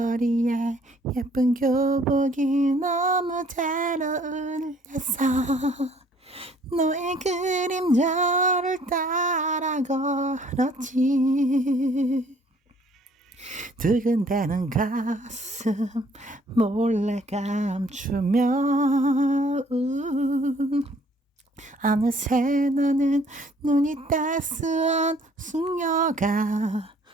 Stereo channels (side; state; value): both; normal; correlation 0.60